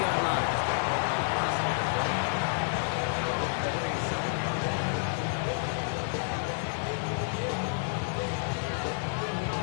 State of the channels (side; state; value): right; silent; digital silence